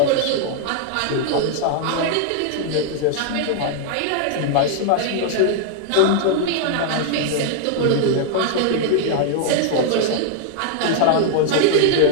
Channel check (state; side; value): different; both; correlation 0.00